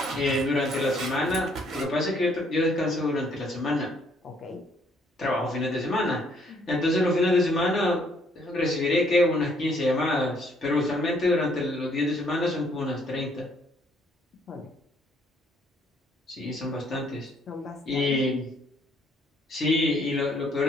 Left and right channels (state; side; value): normal; both; correlation 0.66